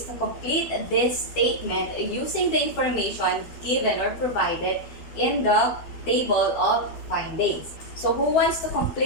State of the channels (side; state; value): right; late; 12 ms